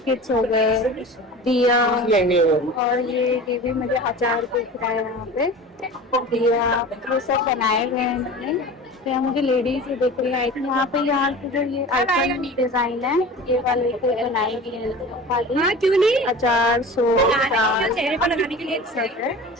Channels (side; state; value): both; normal; correlation 0.36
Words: हो गए, दिया, और ये भी मुझे अचार दिख रहा है यहाँ पे, दिया, ये सब बनाए हुए हैं इन्होंने। तो यहाँ मुझे लेडीज ही दिख रही है। यहाँ पे यहाँ की जो ये आइटम डिजाइन है, ये वाले को बनाई गई है खाली। क्यों नहीं? अचार, सोप, दाल, चेहरे पर लगाने के लिए सेट है।